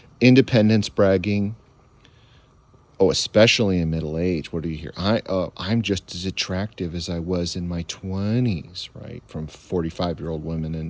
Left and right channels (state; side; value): identical; both; correlation 1.00